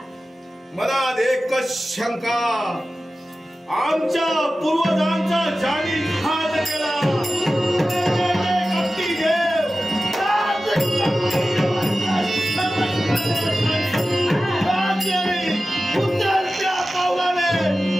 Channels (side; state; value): both; normal; correlation 0.95